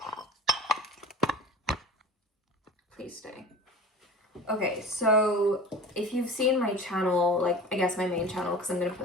Please stay. Okay, so if you've seen my channel, like, I guess my main channel, because I'm going to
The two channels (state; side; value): normal; both; correlation 0.37